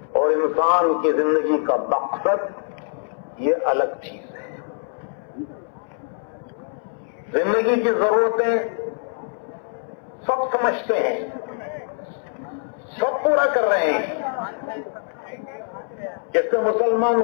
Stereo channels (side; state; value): right; silent; 63 dB below the other